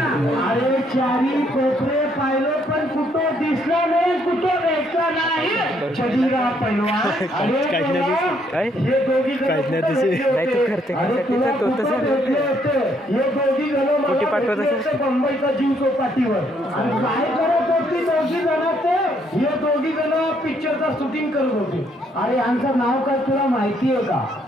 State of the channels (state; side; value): normal; both; correlation 0.70